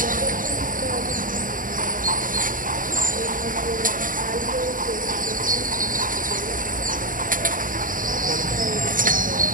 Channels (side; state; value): left; late; 0.39 ms